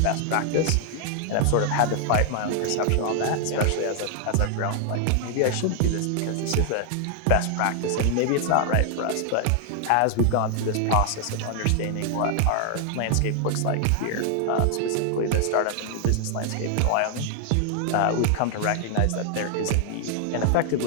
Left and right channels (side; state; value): both; different; correlation 0.00